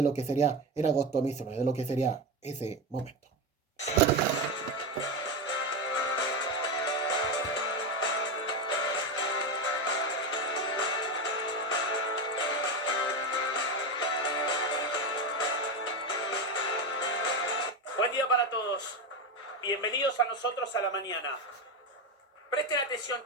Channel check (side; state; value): both; normal; correlation 0.15